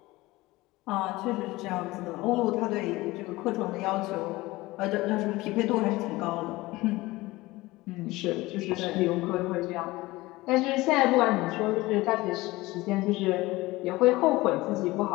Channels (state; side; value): quieter; right; 19.8 dB